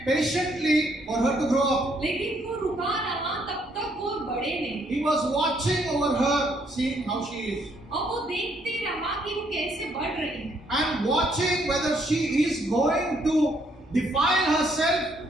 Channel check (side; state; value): both; normal; correlation 0.70